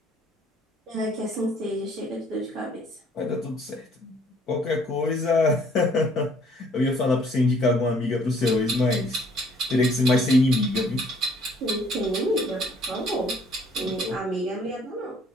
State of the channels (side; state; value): both; normal; correlation 0.60